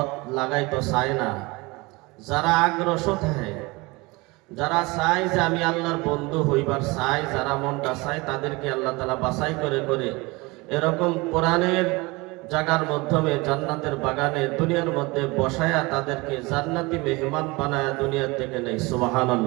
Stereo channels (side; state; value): left; quieter; 24.3 dB